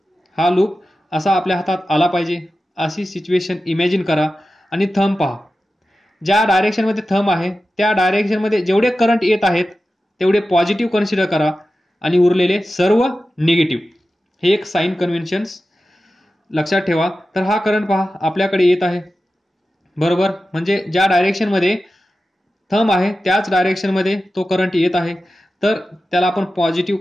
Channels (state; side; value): normal; both; correlation 0.93